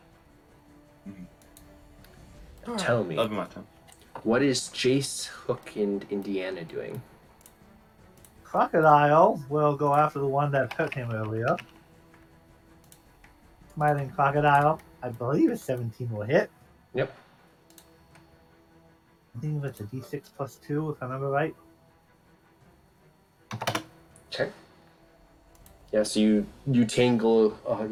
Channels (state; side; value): identical; both; correlation 1.00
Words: Mm-hmm. Tell me, That'll be my turn. what is Jace, Hook, and Indiana doing? Crocodile will go after the one that hurt him earlier. Smiling Crocodile, I believe a 17 will hit. Yep. I think it's a d6 plus 2, if I remember right. Okay. Yeah, so you tangle